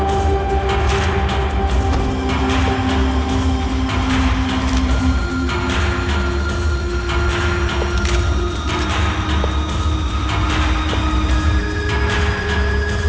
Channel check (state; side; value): identical; both; correlation 1.00